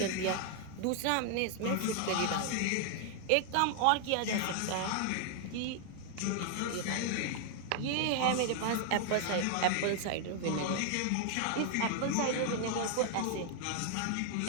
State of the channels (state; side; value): different; both; correlation 0.00